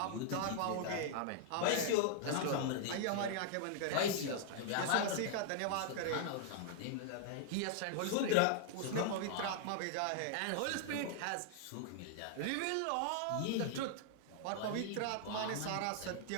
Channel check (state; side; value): different; both; correlation -0.01